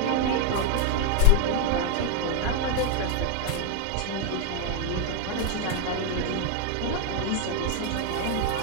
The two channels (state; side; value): different; both; correlation 0.00